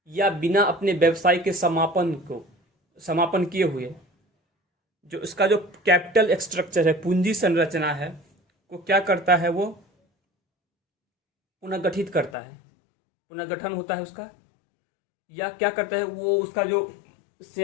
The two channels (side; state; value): right; drops out; at 12.4 s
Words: या बिना अपने व्यवसाय के समापन किए हुए जो इसका जो कैपिटल स्ट्रक्चर है, पूंजी संरचना है, को क्या करता है, वो पुनर्गठित करता है, पुनर्गठन होता है उसका। या क्या करता है, वो उसका जो